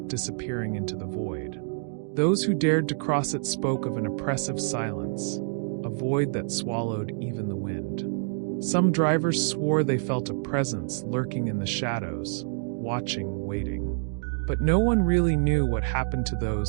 disappearing into the void. Those who dared to cross it spoke of an oppressive silence, a void that swallowed even the wind. Some drivers swore they felt a presence lurking in the shadows, watching, waiting. But no one really knew what happened to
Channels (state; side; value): silent; left; digital silence